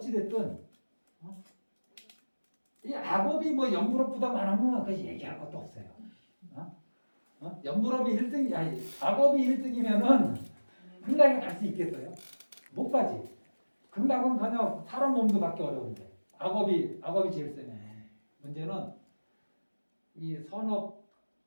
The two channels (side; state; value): both; inverted; correlation -1.00